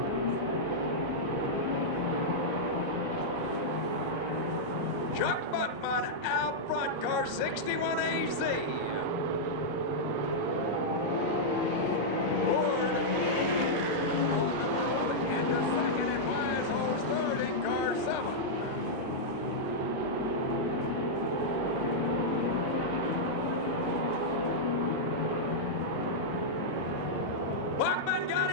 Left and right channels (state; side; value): normal; both; correlation -0.06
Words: Chuck Buckman out front, car 61 AZ.